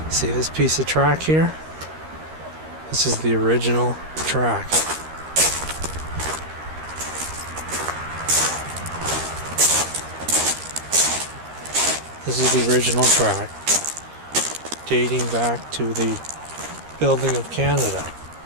See this piece of track here? This is the original track. This is the original track, dating back to the building of Canada.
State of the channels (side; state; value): left; late; 13 ms